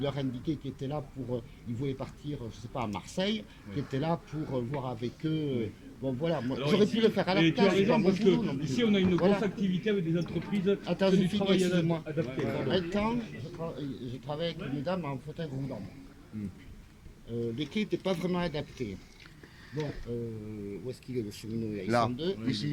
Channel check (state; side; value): identical; both; correlation 1.00